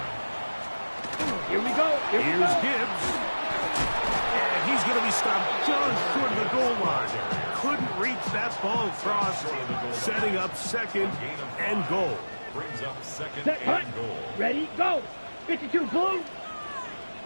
Here we go. Here's Gibbs. And he's going to be stopped just short of the goal line. Couldn't reach that ball across, setting up second and goal. Brings up second Set, and goal. Ready, go. 52, blue.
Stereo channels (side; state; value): both; inverted; correlation -1.00